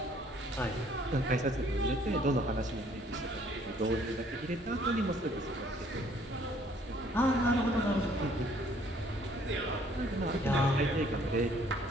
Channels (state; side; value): normal; both; correlation 0.61